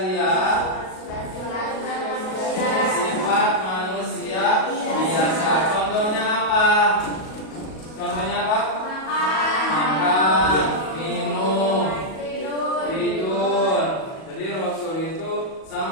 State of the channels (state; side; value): late; right; 37 ms